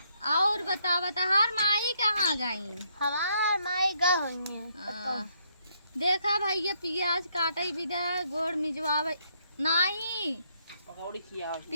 और बतावा तहार माई कहाँ गई हमार माई गा होई है देखा भैया पियाज काटे बिना गोड़ मिजवावे नहीं पकौड़ी खिया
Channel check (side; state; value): both; inverted; correlation -0.72